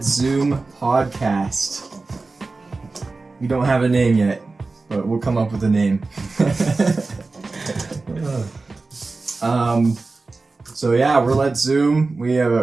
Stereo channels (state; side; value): quieter; left; 3.7 dB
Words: Zoom podcast. We don't have a name yet, but we'll come up with a name. So yeah, we're Let's Zoom.